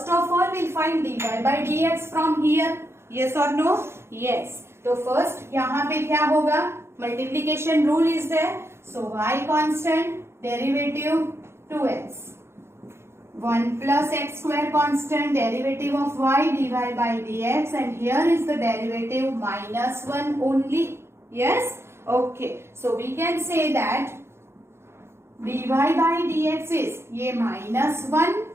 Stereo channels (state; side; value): late; left; 0.12 ms